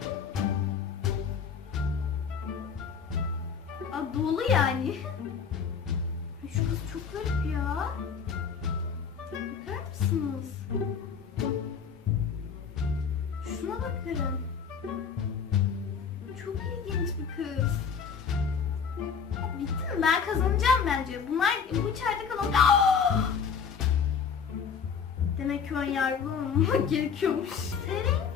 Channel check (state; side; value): quieter; right; 6.5 dB